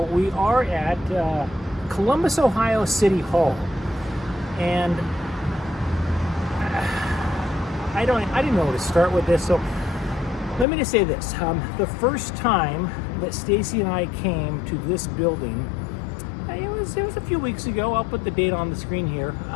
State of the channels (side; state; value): right; drops out; at 10.7 s